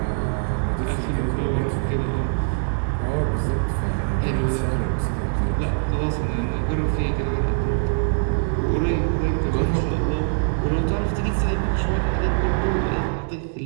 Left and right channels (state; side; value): silent; left; digital silence